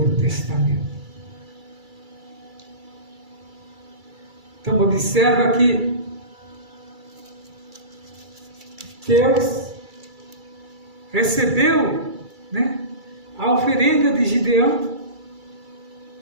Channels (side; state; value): left; late; 2.3 ms